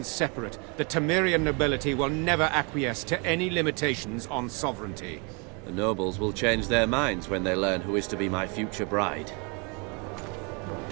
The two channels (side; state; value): left; quieter; 32.6 dB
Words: separate, the Temerian nobility will never acquiesce to any limitations on sovereignty. The nobles will change their minds when they learn who is to be my future bride.